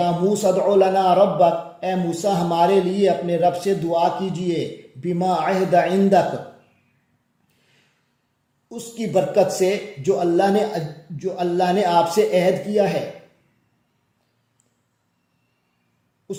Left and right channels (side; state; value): both; identical; correlation 1.00